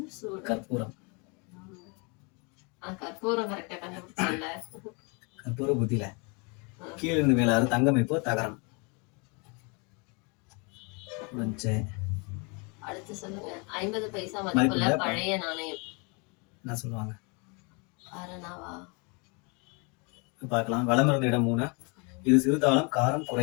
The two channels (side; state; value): right; quieter; 32.3 dB